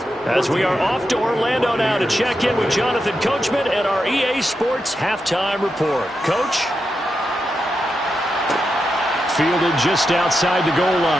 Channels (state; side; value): normal; both; correlation 0.87